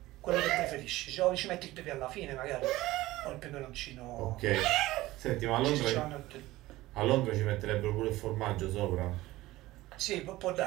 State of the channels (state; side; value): quieter; left; 17.7 dB